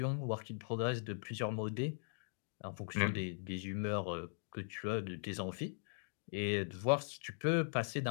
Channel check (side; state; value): right; silent; digital silence